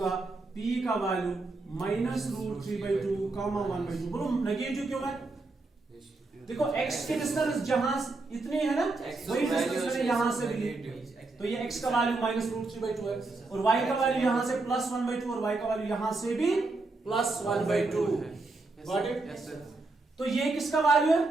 P का वैल्यू -√3/2, 1/2। बोलो नेगेटिव क्यों है? देखो x की डिस्टेंस जहां इतनी है ना, वही डिस्टेंस मैंने यहां से भी ली, तो ये x का वैल्यू -√3/2 है, और y का वैल्यू यहां से +1/2 और y का वैल्यू यहां से भी +1/2 है। Got it? तो ये किसका वैल्यू है?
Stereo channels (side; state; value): left; quieter; 3.4 dB